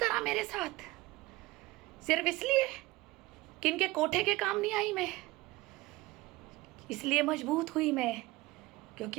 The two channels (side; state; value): left; quieter; 19.9 dB